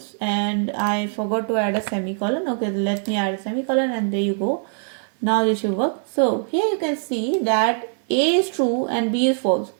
and I forgot to add a semicolon. Okay, let me add a semicolon, and there you go. Now this should work. So here you can see that A is true and B is false.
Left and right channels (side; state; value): left; silent; 58 dB below the other